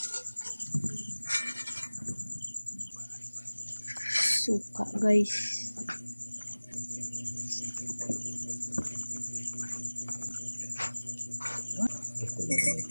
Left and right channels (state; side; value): inverted; both; correlation -1.00